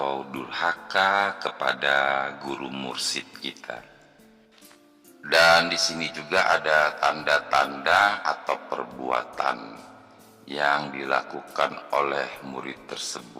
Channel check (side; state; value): both; identical; correlation 1.00